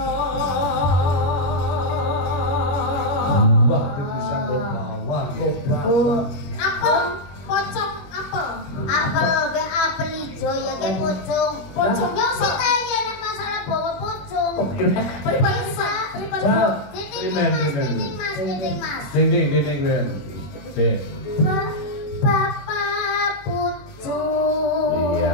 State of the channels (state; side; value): late; right; 21 ms